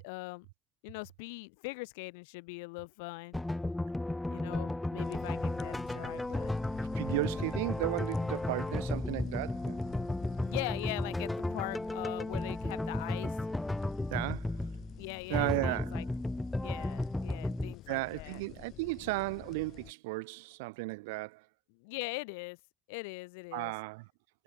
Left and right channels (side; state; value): both; normal; correlation 0.54